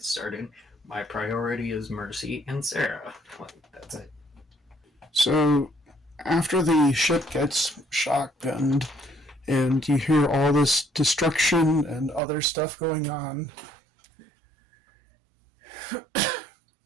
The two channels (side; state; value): left; drops out; at 12.2 s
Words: started, my priority is Mercy and Sarah. That's it. So, after the ship gets shotgunned and you hear all this destruction and other stuff going on,